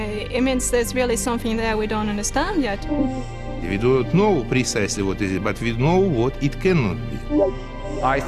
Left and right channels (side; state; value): both; identical; correlation 1.00